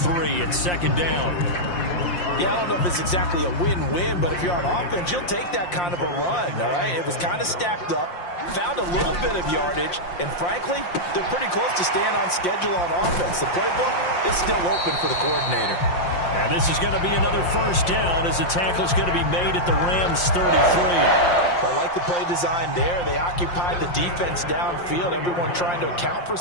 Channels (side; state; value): right; late; 5.7 ms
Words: at 2nd down. Yeah, I don't know if it's exactly a win-win, but if you're on offense, you'll take that kind of a run, all right? It was kind of stacked up, found a little bit of yardage, and frankly, they're pretty close to staying on schedule on offense. The playbook is still open for the coordinator. And this is going to be another 1st down as the tackle's going to be made at the Rams' 33. I like the play design there. They occupied the defense downfield, everyone trying to account for